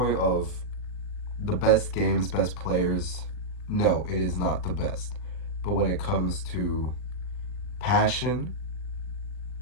of the best games, best players, no, it is not the best. But when it comes to passion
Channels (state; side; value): late; right; 40 ms